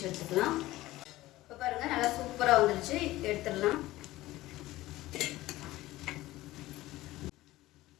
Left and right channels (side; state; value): right; quieter; 17.1 dB